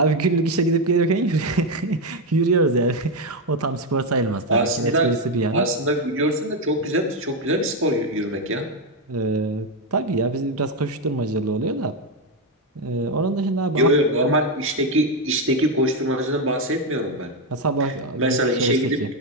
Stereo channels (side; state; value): both; normal; correlation 0.07